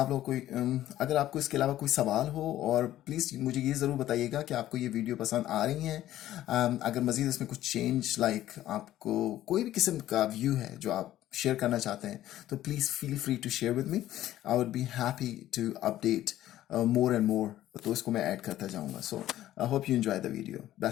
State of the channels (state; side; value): quieter; right; 13.5 dB